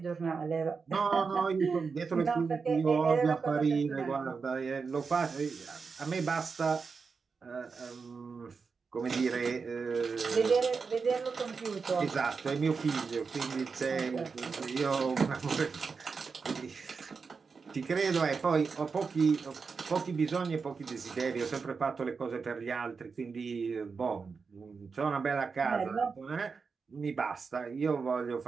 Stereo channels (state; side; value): quieter; left; 5.1 dB